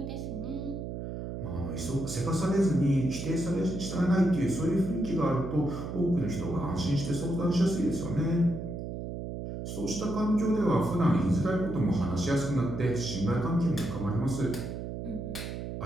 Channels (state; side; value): noise; right; hum, 6 dB below the sound